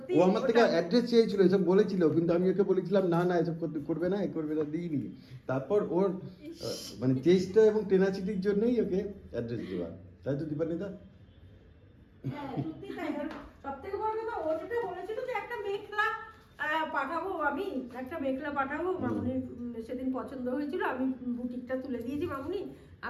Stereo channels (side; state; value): both; identical; correlation 1.00